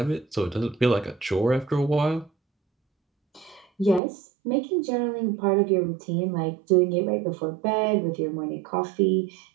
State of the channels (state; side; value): drops out; left; at 4.0 s